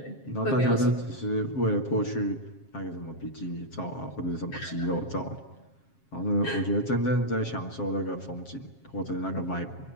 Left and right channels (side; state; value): right; late; 7.4 ms